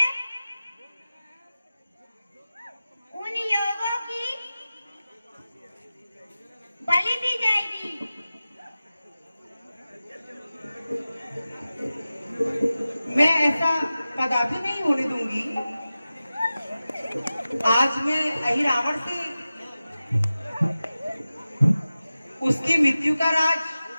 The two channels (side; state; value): both; inverted; correlation -0.95